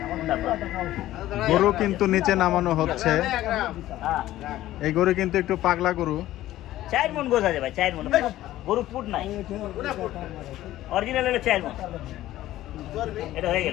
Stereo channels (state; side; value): quieter; right; 14.7 dB